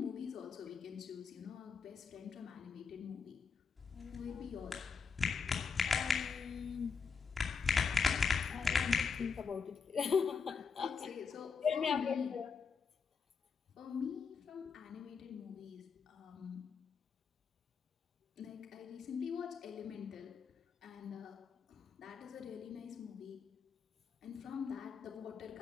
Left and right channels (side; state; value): right; quieter; 5.6 dB